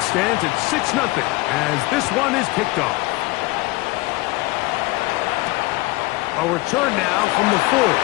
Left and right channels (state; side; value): quieter; right; 21.6 dB